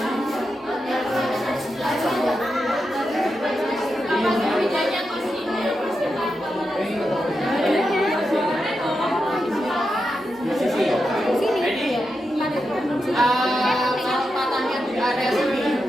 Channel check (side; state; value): both; normal; correlation 0.87